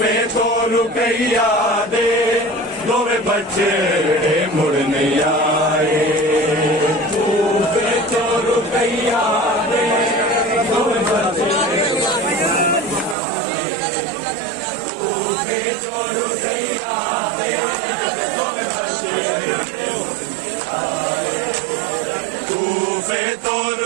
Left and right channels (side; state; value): left; drops out; at 13.2 s